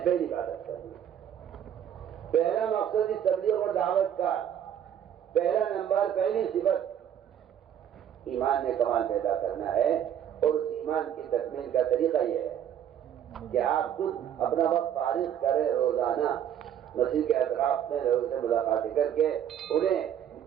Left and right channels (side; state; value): left; quieter; 9.7 dB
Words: پہلی بات کر دی، پہلا مقصد اس تبلیغ اور دعوت کا پہلا نمبر، پہلی صفت ایمان میں کمال پیدا کرنا ہے، اور اس ایمان کی تکمیل کا طریقہ یہ ہے کہ آپ خود اپنا وقت فارغ کریں، روزانہ مسجد کے اطراف میں لوگوں سے ملاقاتیں کر کے انہیں